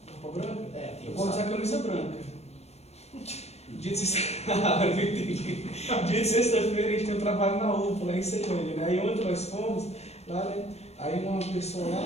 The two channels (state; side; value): late; right; 0.31 ms